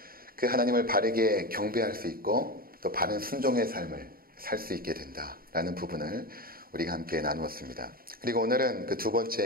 그 하나님을 바르게 경배할 수 있고 또 바른 순종의 삶을 살 수 있게 된다라는 부분을 우리가 함께 나누었습니다. 그리고 오늘은 그 두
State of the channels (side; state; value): left; late; 0.43 ms